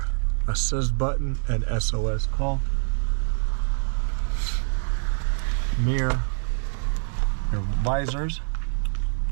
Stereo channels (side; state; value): left; silent; 62 dB below the other